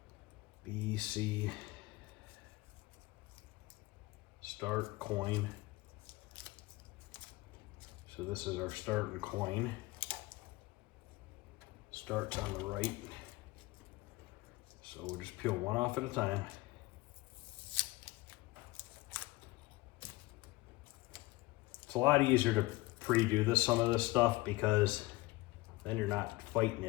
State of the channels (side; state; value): right; quieter; 20.8 dB